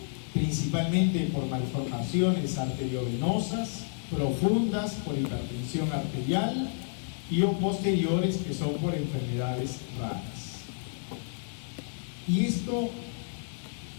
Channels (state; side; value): silent; right; digital silence